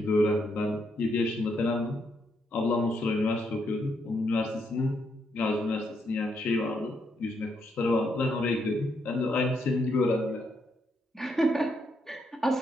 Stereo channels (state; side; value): normal; both; correlation 0.77